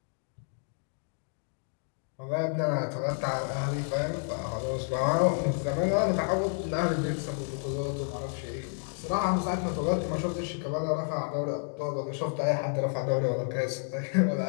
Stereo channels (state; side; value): silent; right; 58 dB below the other